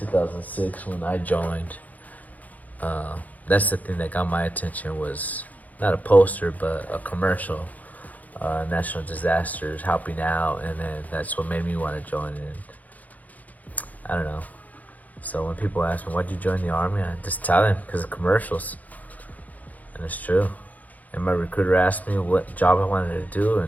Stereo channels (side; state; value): right; late; 0.078 ms